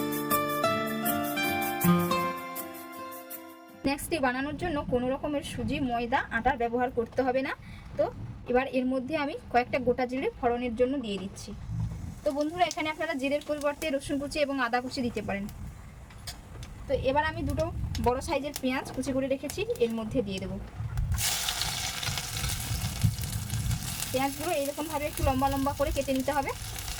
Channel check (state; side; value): identical; both; correlation 1.00